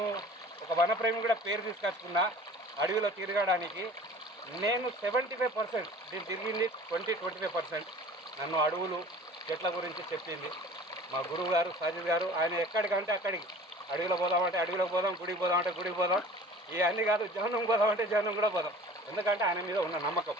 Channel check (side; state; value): both; normal; correlation 0.45